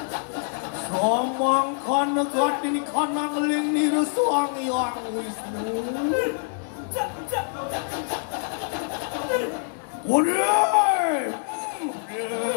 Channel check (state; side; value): silent; right; digital silence